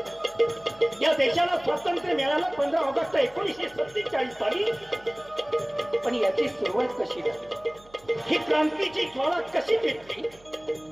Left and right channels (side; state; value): right; noise; hum, 26 dB below the sound